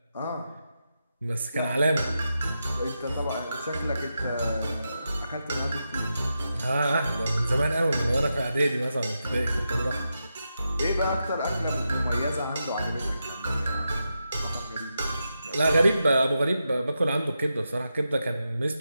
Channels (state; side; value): inverted; both; correlation -0.87